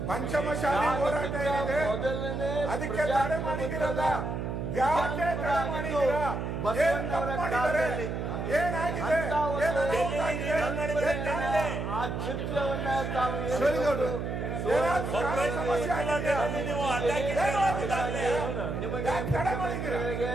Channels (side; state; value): right; noise; hum, 3 dB below the sound